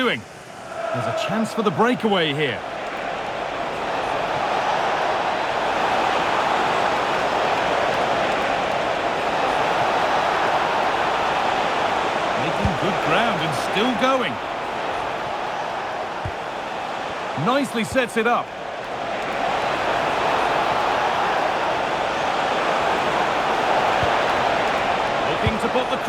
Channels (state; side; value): identical; both; correlation 1.00